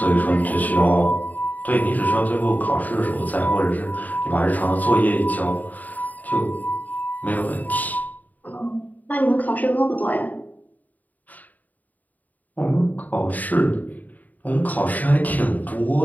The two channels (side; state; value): right; late; 0.079 ms